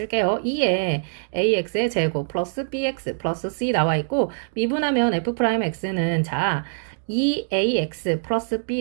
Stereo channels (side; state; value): left; silent; digital silence